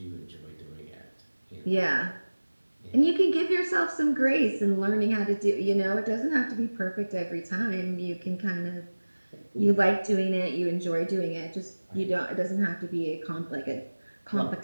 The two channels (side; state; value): both; inverted; correlation -1.00